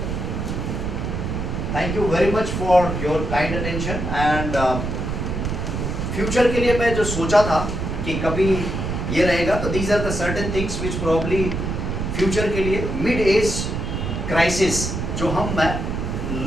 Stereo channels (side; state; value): right; noise; rumble, 3 dB below the sound